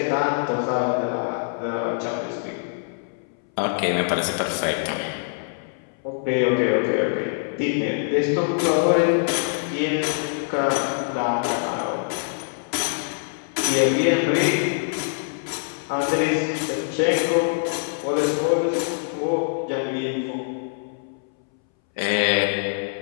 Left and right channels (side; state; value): right; silent; 63 dB below the other